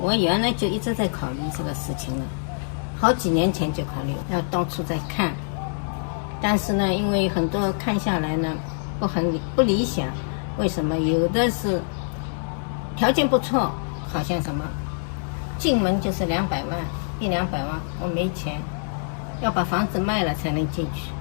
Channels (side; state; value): right; silent; digital silence